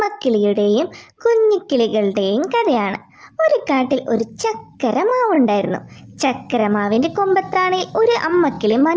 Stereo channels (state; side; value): identical; both; correlation 1.00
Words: കുഞ്ഞിക്കിളികളുടെയും കഥയാണ്. ഒരു കാട്ടിൽ ഒരു ചക്കരമാവുണ്ടായിരുന്നു. ചക്കരമാവിൻ്റെ കൊമ്പത്താണിൽ ഒരു അമ്മക്കിളി